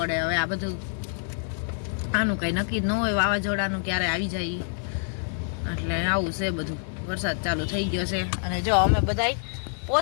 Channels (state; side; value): silent; right; 55 dB below the other